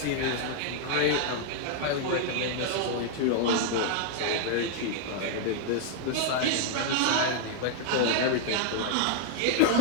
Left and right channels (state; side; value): different; both; correlation 0.00